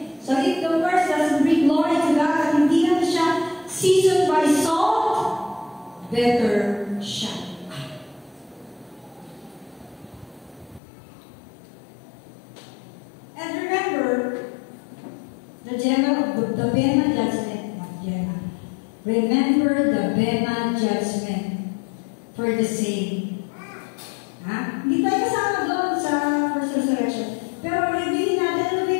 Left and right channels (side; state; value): right; drops out; at 10.8 s